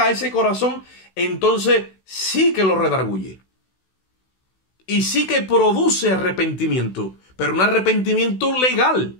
a ese corazón, entonces sí que lo redarguye. Y sí que produce arrepentimiento, pero un arrepentimiento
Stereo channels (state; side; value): late; right; 16 ms